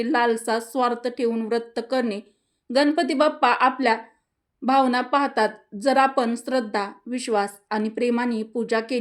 लालसा, स्वार्थ ठेवून व्रत करणे. गणपती बाप्पा आपल्या भावना पाहतात. जर आपण श्रद्धा, विश्वास आणि प्रेमाने पूजा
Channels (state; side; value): identical; both; correlation 1.00